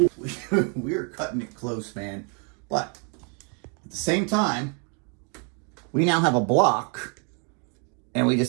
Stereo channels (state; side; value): quieter; left; 37.8 dB